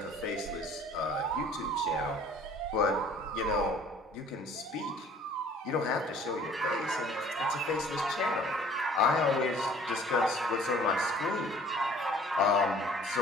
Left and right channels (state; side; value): normal; both; correlation 0.53